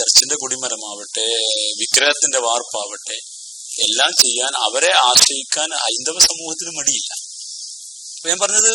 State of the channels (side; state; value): both; normal; correlation 0.82